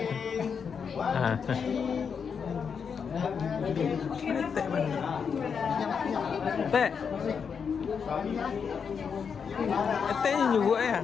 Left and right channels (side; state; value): right; quieter; 6.4 dB